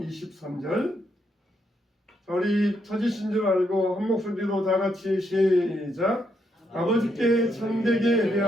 우리 터지신 줄 알고 한 목소리로 다 같이 시작. 아버지께 참되게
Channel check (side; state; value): both; normal; correlation 0.77